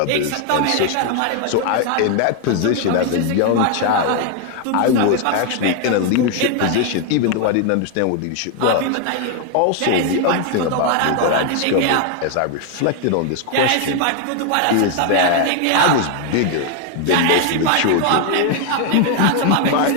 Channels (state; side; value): different; both; correlation 0.01